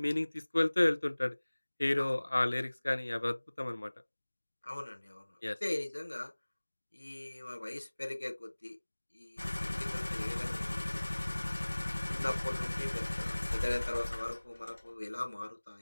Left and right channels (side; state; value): both; inverted; correlation -1.00